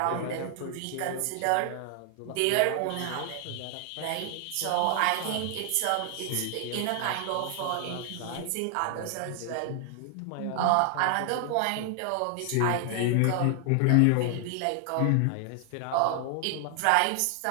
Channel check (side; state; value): both; different; correlation 0.00